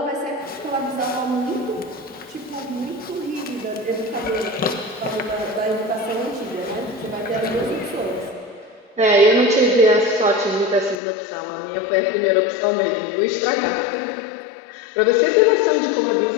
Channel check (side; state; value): right; drops out; at 11.0 s